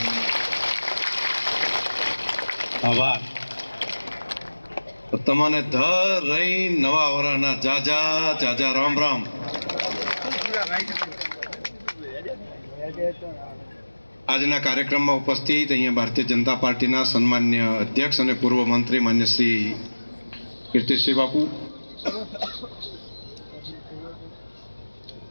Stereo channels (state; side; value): inverted; both; correlation -1.00